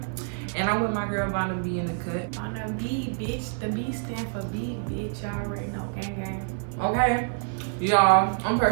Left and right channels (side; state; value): left; silent; 60 dB below the other